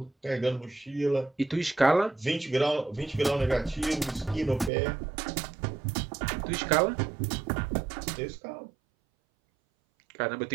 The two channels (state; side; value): drops out; left; at 4.7 s